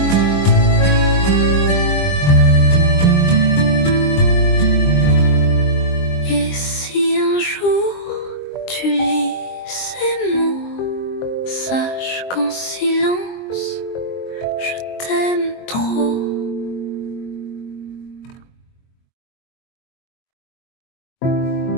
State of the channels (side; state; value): right; late; 22 ms